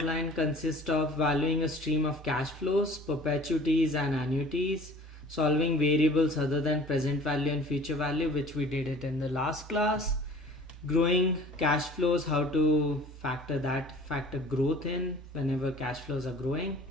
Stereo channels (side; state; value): both; normal; correlation 0.47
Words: consists of valuing a stream of cash flows, perpetuities and annuities, solving variables other than present value and future value, which we did it in the last class, growing cash flows, how to factor growth in whenever cash flows are growing.